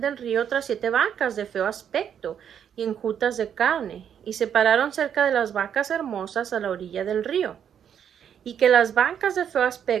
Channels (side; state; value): left; quieter; 8.6 dB